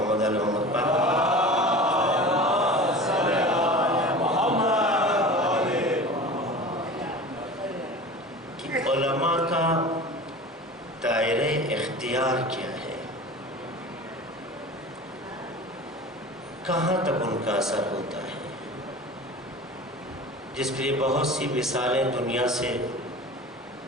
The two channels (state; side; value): normal; both; correlation 0.36